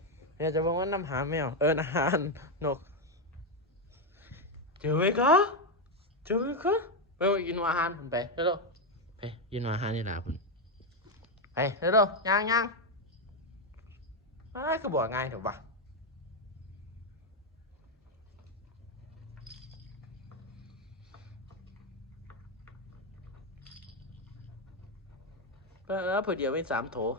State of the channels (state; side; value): normal; both; correlation 0.06